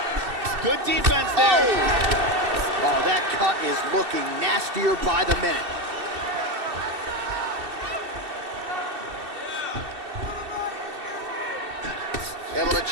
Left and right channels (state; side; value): late; left; 2.7 ms